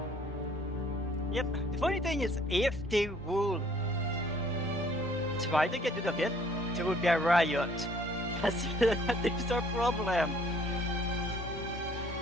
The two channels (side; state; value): both; normal; correlation 0.59